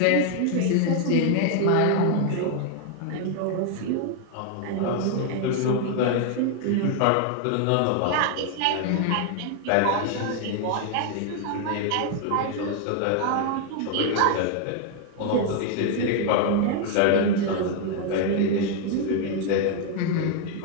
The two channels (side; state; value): both; different; correlation 0.00